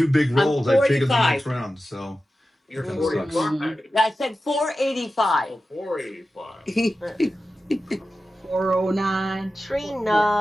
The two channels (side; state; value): both; normal; correlation 0.93